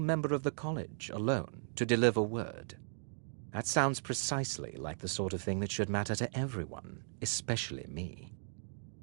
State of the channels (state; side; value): silent; left; digital silence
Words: of the college, alone, to deliver word. That sounds precisely like the sort of thing that should matter to everyone, especially me.